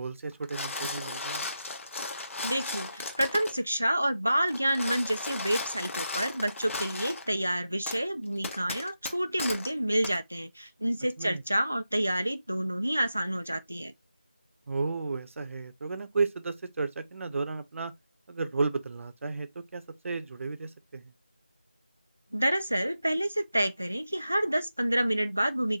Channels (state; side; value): inverted; both; correlation -0.89